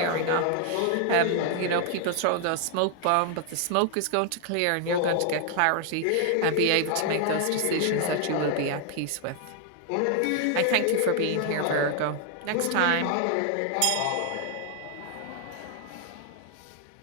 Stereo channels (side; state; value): both; different; correlation 0.00